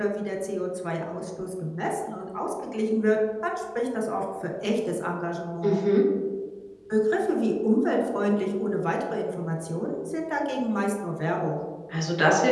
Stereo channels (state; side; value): identical; both; correlation 1.00